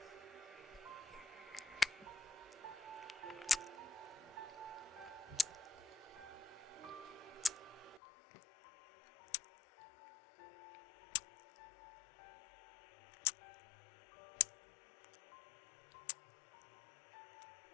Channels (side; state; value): right; drops out; at 8.0 s